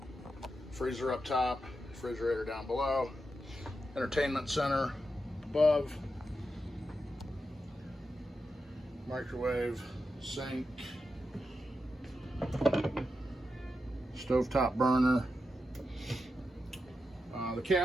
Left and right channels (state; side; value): normal; both; correlation 0.88